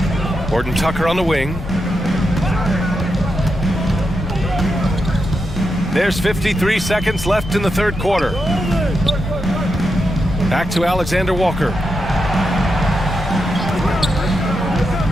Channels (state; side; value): noise; left; rumble, 11 dB below the sound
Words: Horton Tucker on the wing. There's 53 seconds left in the third quarter. Back to Alexander Walker.